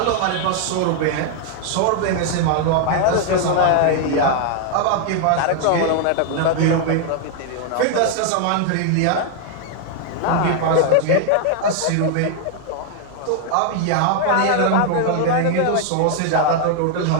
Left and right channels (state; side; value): different; both; correlation 0.00